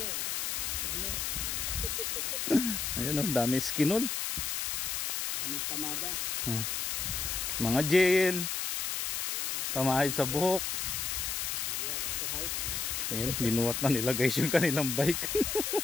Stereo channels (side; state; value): left; noise; hiss, 1 dB below the sound